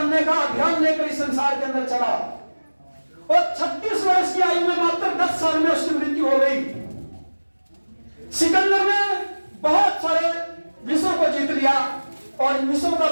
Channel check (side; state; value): both; inverted; correlation -1.00